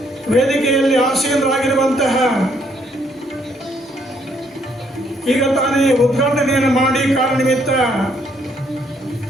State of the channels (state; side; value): normal; both; correlation 0.69